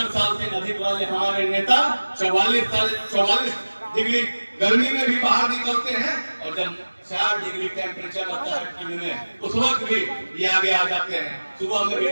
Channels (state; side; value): inverted; both; correlation -1.00